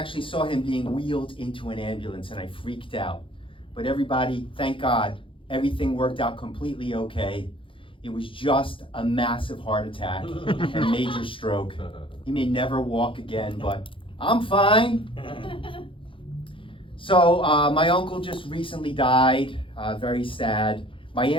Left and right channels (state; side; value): late; right; 0.25 ms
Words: saw him being wheeled into an ambulance, and I freaked out. But everybody, thank God, everything worked out completely okay. It was just a massive heart attack and major stroke. He may never walk again, but I'm fine. So my uncle just recently died, very sad. My